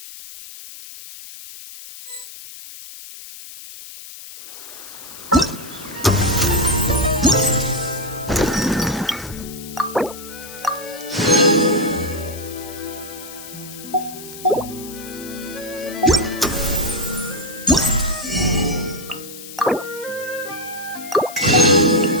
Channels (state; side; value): noise; left; hiss, 14 dB below the sound